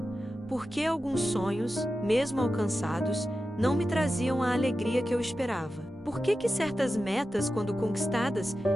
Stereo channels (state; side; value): normal; both; correlation 0.92